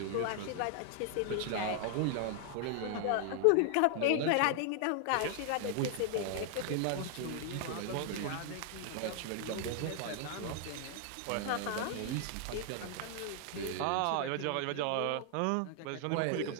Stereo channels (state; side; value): different; both; correlation 0.00